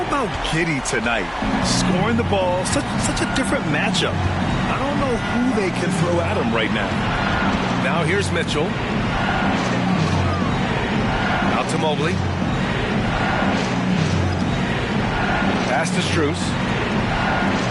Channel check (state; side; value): identical; both; correlation 1.00